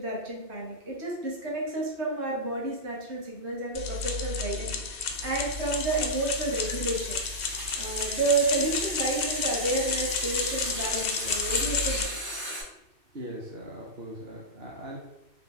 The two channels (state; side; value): late; left; 2.6 ms